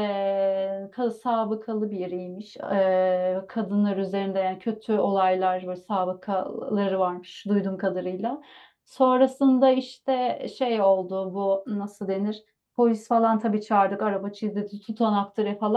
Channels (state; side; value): identical; both; correlation 1.00